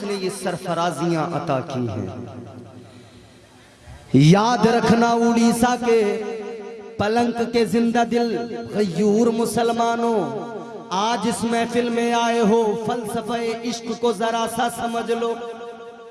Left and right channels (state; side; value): identical; both; correlation 1.00